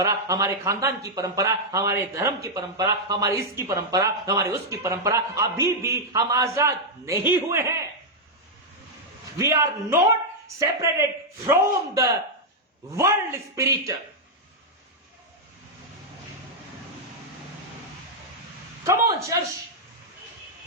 हमारे खानदान की परंपरा, हमारे धर्म की परंपरा, हमारी इसकी परंपरा, हमारी उसकी परंपरा, अभी भी हम आजाद नहीं हुए हैं। We are not separated from the world spirit. Come on church.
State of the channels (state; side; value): normal; both; correlation -0.03